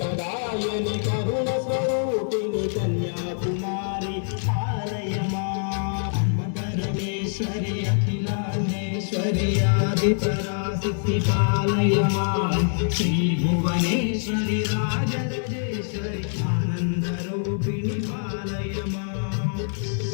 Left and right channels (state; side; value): silent; right; digital silence